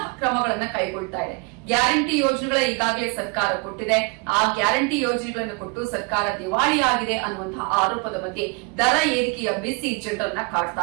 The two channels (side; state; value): left; quieter; 32.1 dB